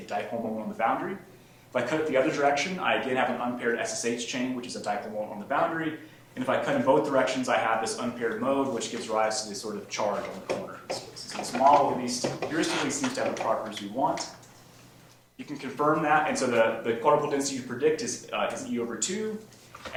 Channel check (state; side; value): identical; both; correlation 1.00